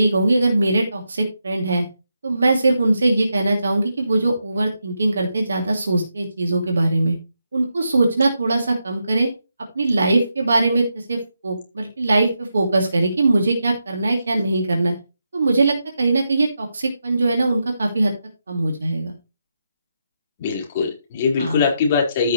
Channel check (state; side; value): inverted; both; correlation -0.84